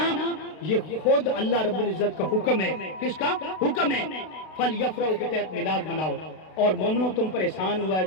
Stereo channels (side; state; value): right; late; 32 ms